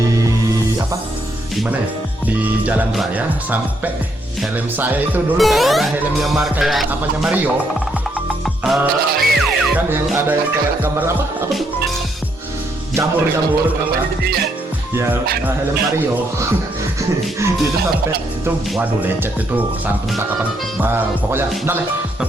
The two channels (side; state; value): both; normal; correlation 0.74